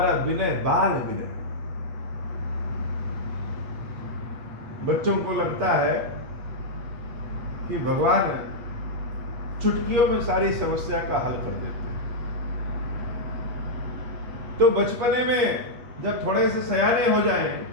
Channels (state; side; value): late; left; 8.5 ms